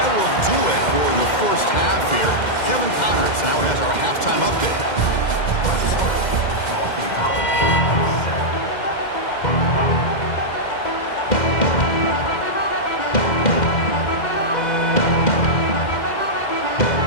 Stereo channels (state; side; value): late; right; 2.1 ms